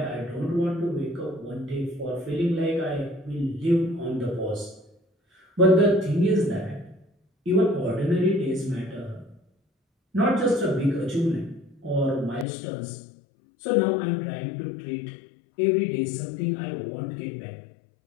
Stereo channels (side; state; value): right; drops out; at 12.5 s